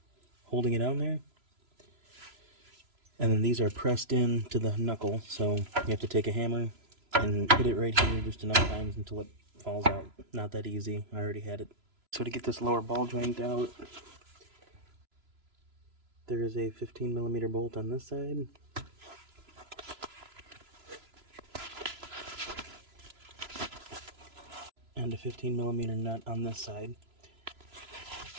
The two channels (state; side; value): late; left; 3.0 ms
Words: holding it on there. And then these are pressed in to the knuckle, so you have to take a hammer and hit it right here just enough times until it falls out. Not that easy, I already had it. So to get this lower ball joint out, there is a 15mm bolt on this side. And a 15mm nut on this side.